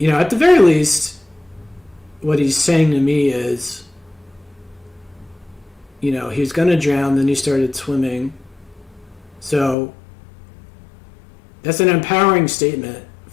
at the very least, what he's saying to me is, he was going to drown, then he started swimming. So that's an empowering statement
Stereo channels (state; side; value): drops out; right; at 9.8 s